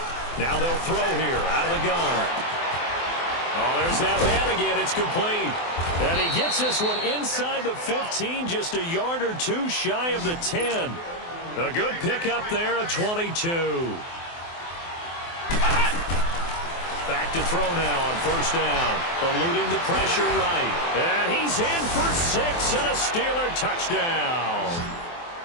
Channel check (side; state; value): right; late; 24 ms